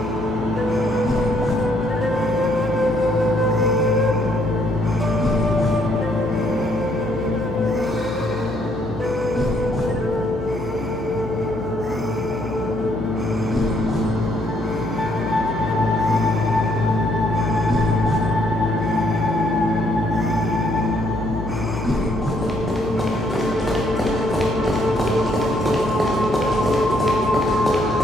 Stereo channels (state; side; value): noise; left; hum, 12 dB below the sound